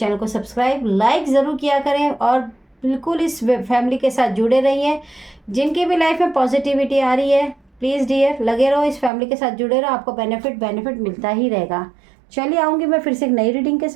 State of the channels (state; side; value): drops out; left; at 9.1 s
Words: को सब्सक्राइब लाइक ज़रूर किया करें और बिल्कुल इस फैमिली के साथ जुड़े रहिए। जिनकी भी लाइफ में पॉजिटिविटी आ रही है, प्लीज़ डियर लगे रहो, इस फैमिली के साथ जुड़े रहो, आपको बेनिफिट मिलता ही रहेगा। चलिए आऊँगी मैं फिर से एक नई रीडिंग के